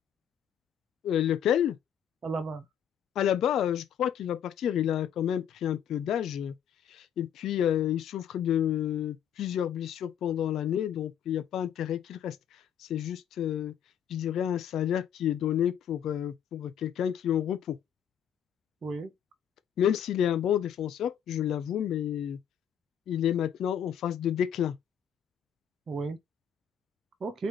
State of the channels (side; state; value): right; quieter; 9.0 dB